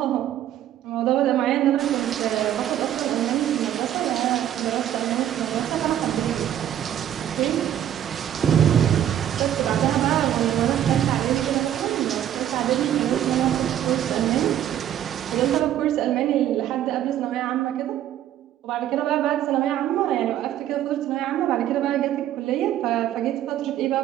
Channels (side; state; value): left; quieter; 11.3 dB